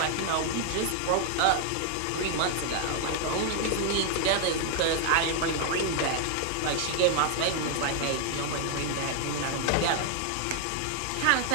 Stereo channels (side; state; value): both; different; correlation 0.00